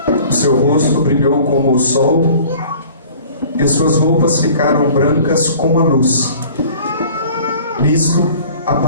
O seu rosto brilhou como o sol, e suas roupas ficaram brancas como a luz. Nisto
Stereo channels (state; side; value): inverted; both; correlation -0.48